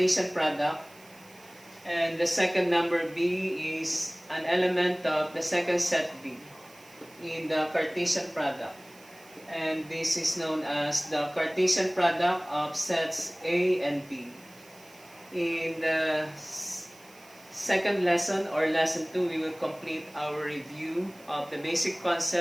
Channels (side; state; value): right; noise; hiss, 24 dB below the sound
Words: product, and the second number B is an element of the second set B in the Cartesian product. And this is known as the Cartesian product of sets A and B. In the second lesson, or lesson 2, we will complete our review of the basic